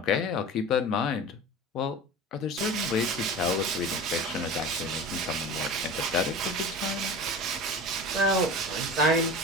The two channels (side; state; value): both; normal; correlation 0.33